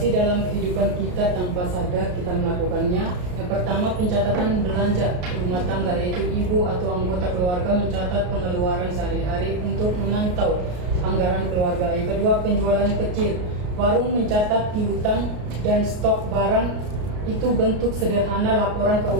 dalam kehidupan kita tanpa sadar kita melakukannya. Yang pertama, pencatatan belanja rumah tangga, yaitu ibu atau anggota keluarga mencatat pengeluaran sehari-hari untuk memantau anggaran keluarga. Yang kedua, penjualan kecil, warung mencatat piutang dan stok barang, itu bentuk sederhana laporan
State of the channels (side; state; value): left; late; 33 ms